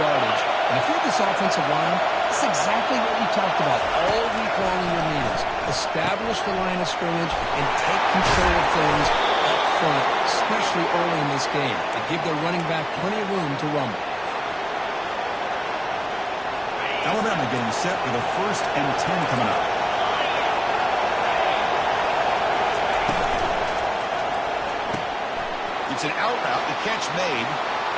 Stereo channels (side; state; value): both; identical; correlation 1.00